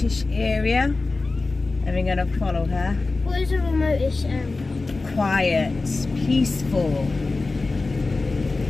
area and we're going to follow her. What is a remotish area? Quiet, peaceful.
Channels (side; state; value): right; quieter; 3.6 dB